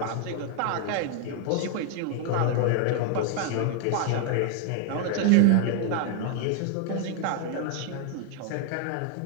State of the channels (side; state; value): both; different; correlation 0.00